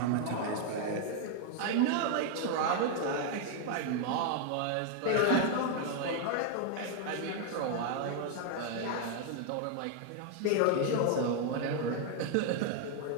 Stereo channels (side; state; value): both; different; correlation 0.00